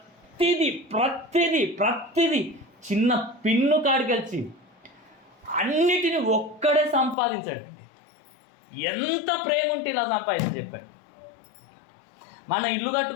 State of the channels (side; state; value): right; drops out; at 7.2 s